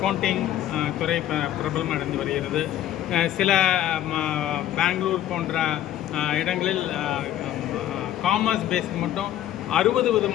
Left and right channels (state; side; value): quieter; right; 12.3 dB